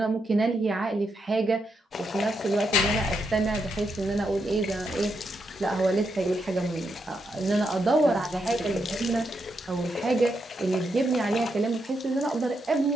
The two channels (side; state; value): both; normal; correlation 0.82